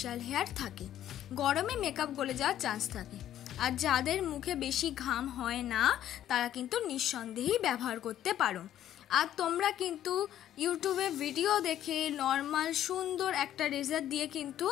হেয়ার থাকে, গরমে মেকআপ গলে যাওয়ার চান্স থাকে। আর যাদের মুখে বেশি ঘাম হয় না তারা কিন্তু নিঃসন্দেহেই ব্যবহার করতে পারো। আর তোমরা কিন্তু ইউটিউবে ভিডিও দেখে নর্মাল সুন্দর একটা রেজার দিয়ে কিন্তু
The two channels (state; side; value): quieter; right; 11.6 dB